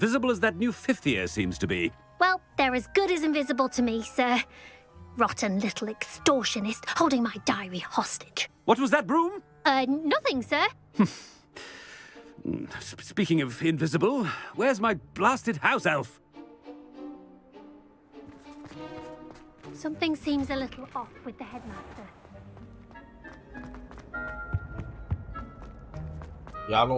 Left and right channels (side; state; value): both; identical; correlation 1.00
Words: as that new fifth year seems to be. Well, they're as good as invisible to me, sir. Rotten little extortionist holding my diary hostage. What was that, Broom? Nothing, sir. Speaking of invisible, where's my blasted house elf? Something seems a little off with the headmaster. Y'all